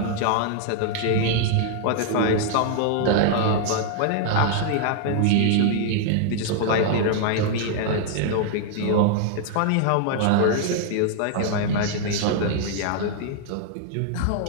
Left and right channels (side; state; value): both; different; correlation -0.01